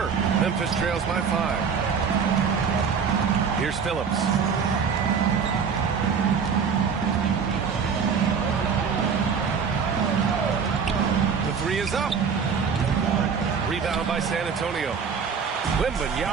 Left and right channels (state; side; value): quieter; left; 6.2 dB